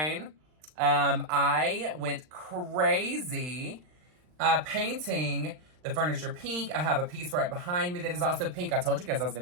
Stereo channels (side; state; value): left; late; 39 ms